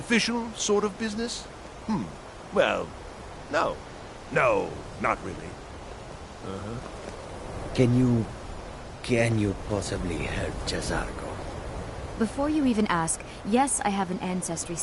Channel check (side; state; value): both; identical; correlation 1.00